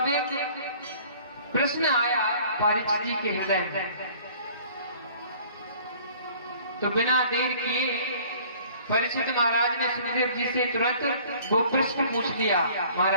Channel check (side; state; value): both; inverted; correlation -0.52